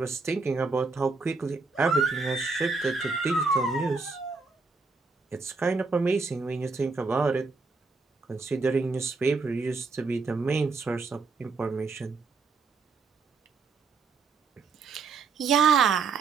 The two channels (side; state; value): left; quieter; 4.3 dB